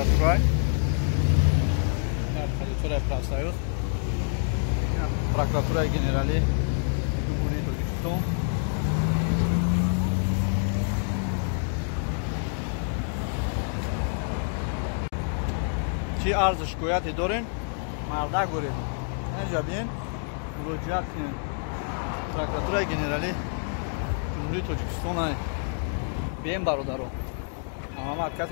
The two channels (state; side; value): silent; right; 58 dB below the other